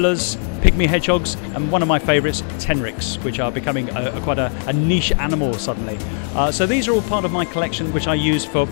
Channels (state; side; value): silent; right; 60 dB below the other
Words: pygmy hedgehogs, and one of my favourites, tenrics, which are becoming quite a niche animal suddenly. So these are all part of my collection, which I use for